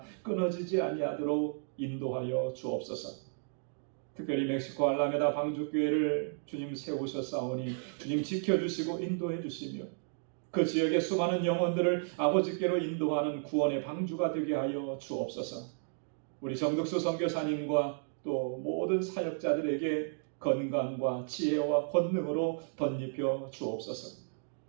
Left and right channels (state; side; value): silent; left; digital silence